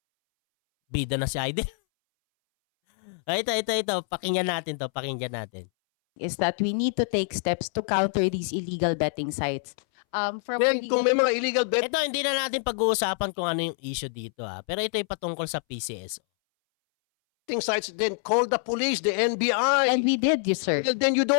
Bida na si Aiden. Ito. Pakinggan natin. Is that we need to take steps to counter these illegal betting sites. Kung may mga illegal betting Ito, hindi na natin pag-uusapan kung ano yung issue dito Pero ito ay patungkol sa PCSO. sites, then call the police, the NBI. And we did, yes, sir. Well, then you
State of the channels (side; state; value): right; silent; 61 dB below the other